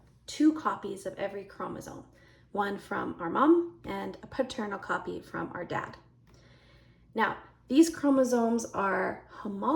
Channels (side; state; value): both; identical; correlation 1.00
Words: two copies of every chromosome, one from our mom and a paternal copy from our dad. Now, these chromosomes are